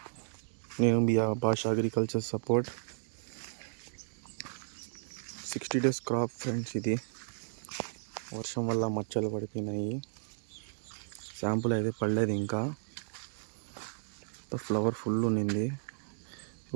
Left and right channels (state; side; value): silent; left; digital silence